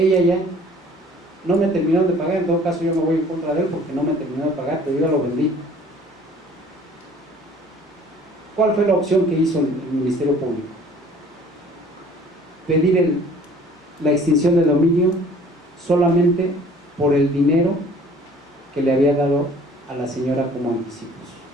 ya no me terminaron de pagar, en todo caso yo me voy en contra de él porque no me terminó de pagar, pero yo ya lo vendí. ¿Cuál fue la opción que hizo el Ministerio Público? Pedir la extinción de dominio solamente por el dinero que le había dado a la señora como anticipos.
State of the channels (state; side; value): normal; both; correlation 0.52